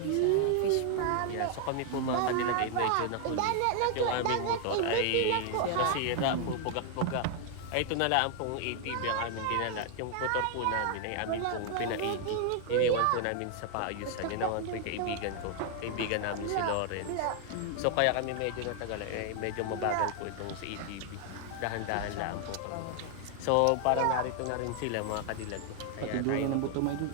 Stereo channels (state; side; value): different; both; correlation 0.00